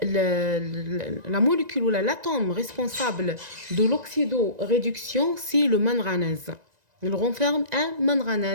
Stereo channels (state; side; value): late; left; 1.9 ms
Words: molécule ou l'atome responsable de l'oxydoréduction, c'est le manganèse. Il renferme un